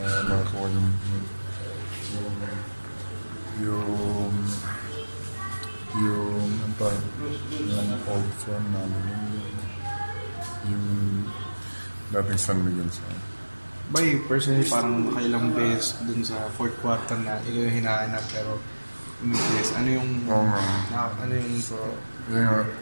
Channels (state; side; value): inverted; both; correlation -1.00